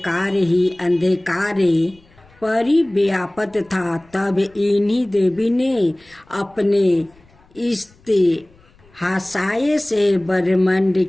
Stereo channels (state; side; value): noise; left; rumble, 30 dB below the sound